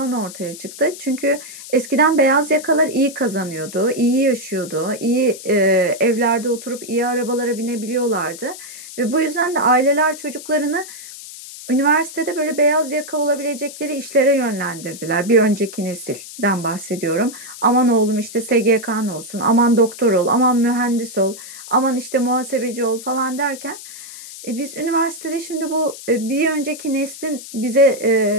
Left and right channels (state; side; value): noise; left; hiss, 14 dB below the sound